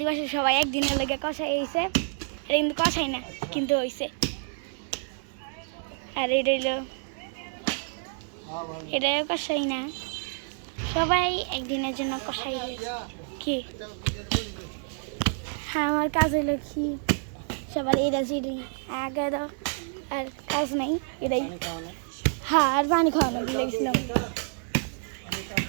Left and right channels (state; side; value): silent; left; 59 dB below the other